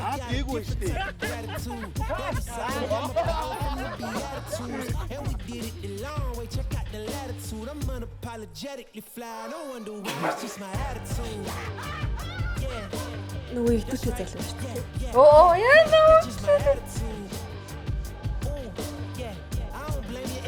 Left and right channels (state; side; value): identical; both; correlation 1.00